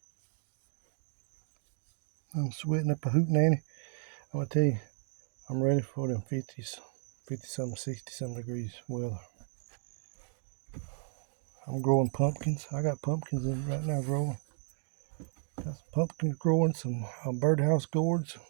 I'm sweating up a hootenanny. I'm gonna tell you, I'm ready for them 50s, 50-something, 60-something degrees weather. I'm growing pumpkins. I got pumpkins in right now growing. Got some pumpkins growing, some birdhouse gourds.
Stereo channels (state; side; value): silent; left; 55 dB below the other